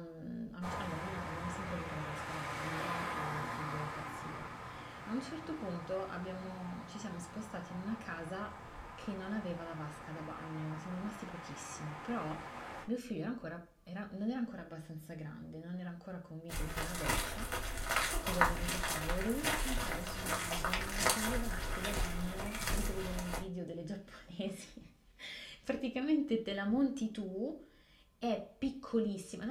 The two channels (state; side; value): identical; both; correlation 1.00